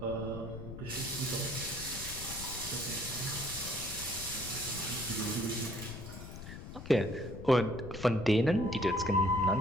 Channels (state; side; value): noise; left; rumble, 11 dB below the sound